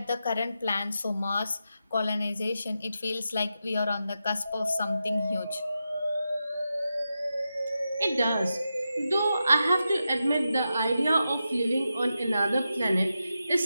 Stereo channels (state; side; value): inverted; both; correlation -0.89